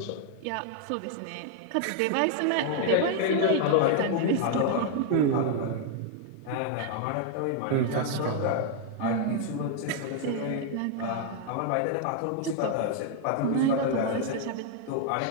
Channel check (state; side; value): different; both; correlation 0.00